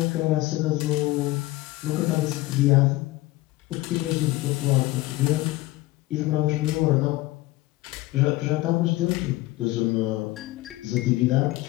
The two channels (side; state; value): right; quieter; 18.5 dB